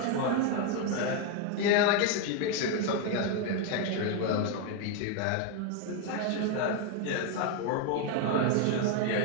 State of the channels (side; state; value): both; different; correlation 0.01